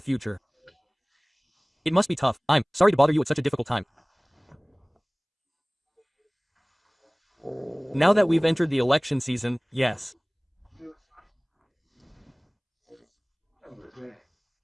It must be tough. I'm sorry to bother you at such a difficult time. Now that we've entered the election season, yes.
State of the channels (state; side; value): identical; both; correlation 1.00